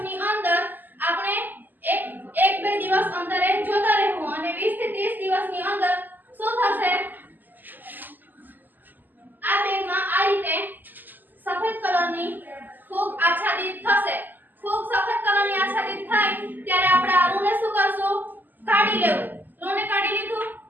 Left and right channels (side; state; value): left; late; 0.088 ms